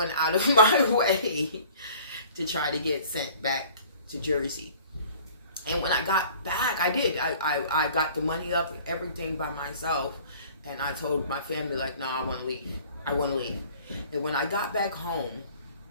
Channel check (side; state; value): both; inverted; correlation -0.50